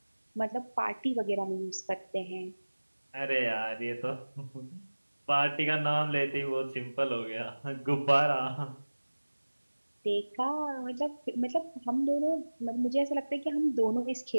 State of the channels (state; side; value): inverted; both; correlation -1.00